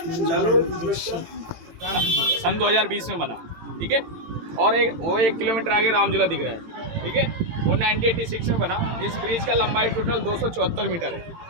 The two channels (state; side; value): late; left; 18 ms